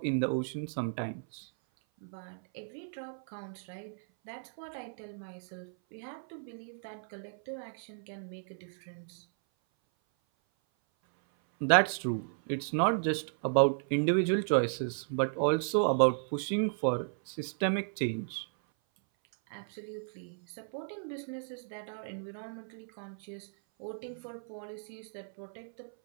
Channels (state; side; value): silent; left; 55 dB below the other